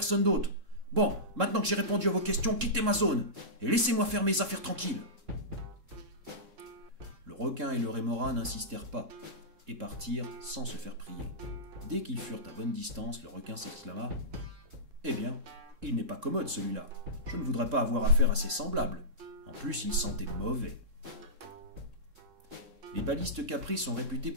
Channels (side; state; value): left; late; 3.7 ms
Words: d'autre. Bon, maintenant que j'ai répondu à vos questions, quittez ma zone et laissez-moi faire mes affaires tranquilles. Le requin et le rémora n'insistèrent pas et partirent sans se faire prier. Dès qu'ils furent à bonne distance, le requin s'exclama: « Eh bien, il n'est pas commode celui-là. Je ne voudrais pas avoir affaire à ses semblables. En plus, il sentait mauvais. » Les balistes capris sont réputés